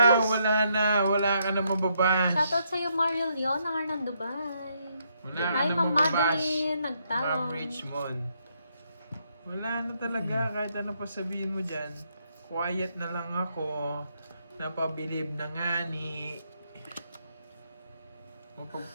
na, wala ka na mababash. Shoutout sa'yo, Mario Leon, ng Arnan Dubai. Wala ka Hi, na Ma'am mababash. Madeline, Ma'am nagtawag. Richmond. Wala na talaga, kahit ano pa sabihin mo dyan. Quiet na lang ako. Napabilib na nga ni...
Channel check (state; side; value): inverted; both; correlation -0.75